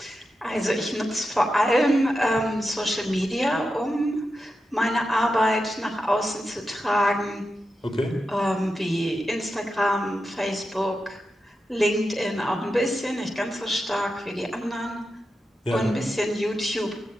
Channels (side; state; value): both; normal; correlation 0.90